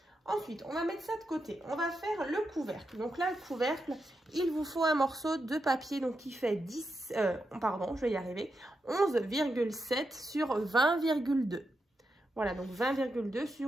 Ensuite, on va mettre ça de côté. On va faire le couvercle. Donc là, le couvercle, il vous faut un morceau de papier donc qui fait 11,7 sur 20,2. Voilà, donc 20,2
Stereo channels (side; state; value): both; normal; correlation 0.86